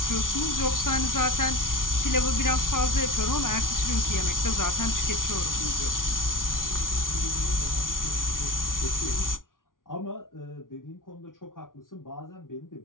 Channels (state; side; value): late; right; 0.89 ms